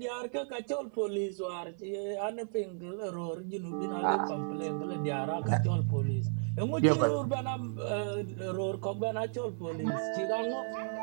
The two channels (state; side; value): silent; left; digital silence